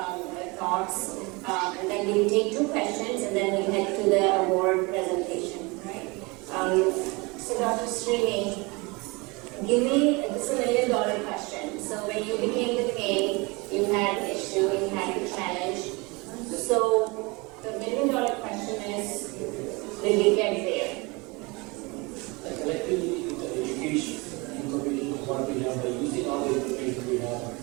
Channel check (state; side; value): quieter; left; 26.4 dB